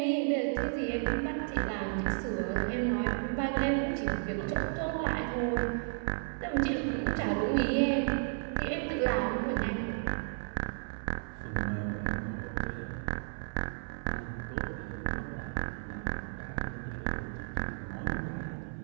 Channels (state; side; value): silent; left; 56 dB below the other